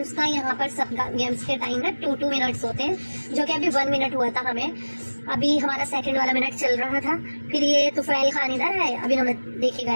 का। यहाँ पर सब गेम्स के टाइम ना 2-2 मिनट्स होते हैं, जो कि अभी 1 मिनट हुआ था हमें। अभी हमारा सेकंड वाला मिनट चल रहा था। फिर ये तुफैल खान इधर है, अभी हमें देखिए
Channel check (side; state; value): both; inverted; correlation -1.00